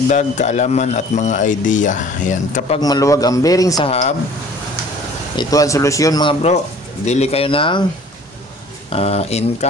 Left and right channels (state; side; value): normal; both; correlation 0.50